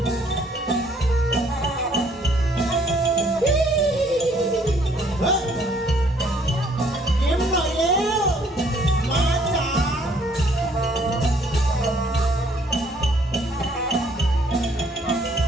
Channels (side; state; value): both; normal; correlation 0.63